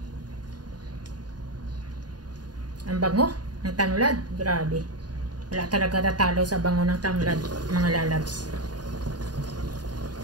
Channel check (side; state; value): left; late; 0.69 ms